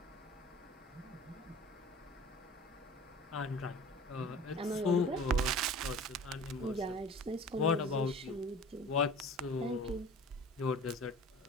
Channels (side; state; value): both; normal; correlation 0.42